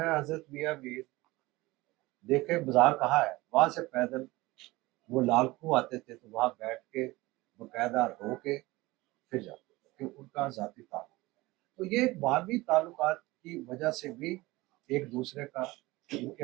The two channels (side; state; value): left; quieter; 20.4 dB